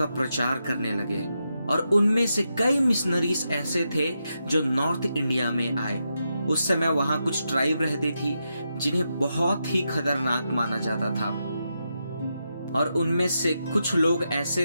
प्रचार करने लगे और उनमें से कई मिशनरीज ऐसे थे जो नॉर्थ इंडिया में आए। उस समय वहां कुछ ट्राइब रहती थी जिन्हें बहुत ही खतरनाक माना जाता था और उनमें से कुछ लोग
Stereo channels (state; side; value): inverted; both; correlation -0.85